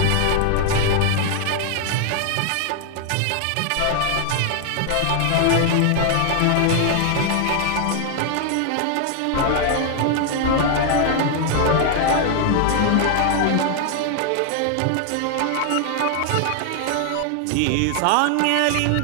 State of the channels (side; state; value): both; different; correlation 0.00